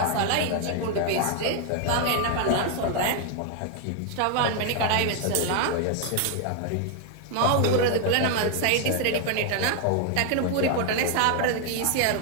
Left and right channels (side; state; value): both; different; correlation 0.00